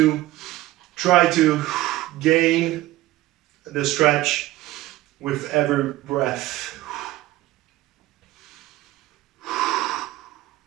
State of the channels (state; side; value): quieter; left; 16.6 dB